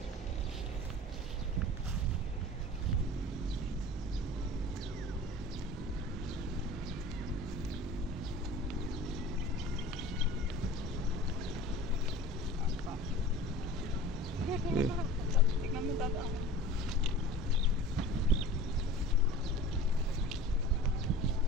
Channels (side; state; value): both; normal; correlation 0.40